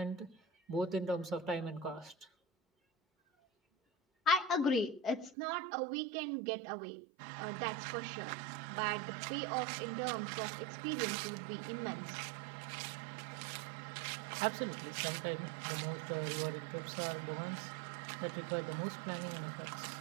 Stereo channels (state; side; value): drops out; left; at 5.4 s